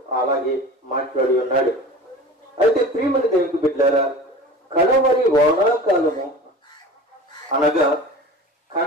అలాగే మాట్లాడి ఉన్నాడు. అయితే ప్రియమైన దేవునికి బిడ్డలారా, కడవరి వానాకాలము అనగా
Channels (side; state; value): both; normal; correlation 0.38